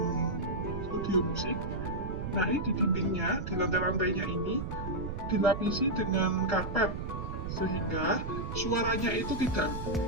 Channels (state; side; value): noise; right; rumble, 5 dB below the sound